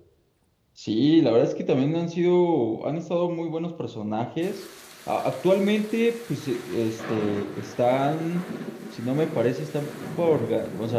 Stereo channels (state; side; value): identical; both; correlation 1.00